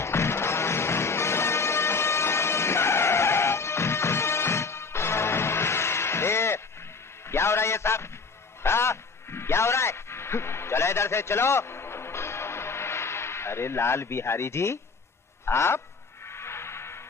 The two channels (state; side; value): quieter; right; 4.5 dB